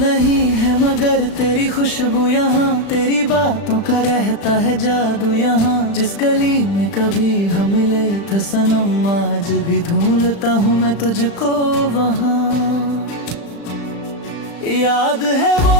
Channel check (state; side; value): late; right; 35 ms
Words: है मगर तेरी खुशबू यहाँ, तेरी बातों का रहता है जादू यहाँ। जिस गली में कभी हम मिले थे सनम, आज भी ढूंढता हूँ मैं तुझको वहाँ। याद है वो